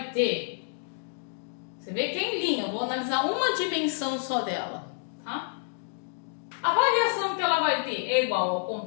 ter, você vê que é em linha, eu vou analisar uma dimensão só dela, tá? A variação que ela vai ter é igual ao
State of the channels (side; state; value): right; silent; digital silence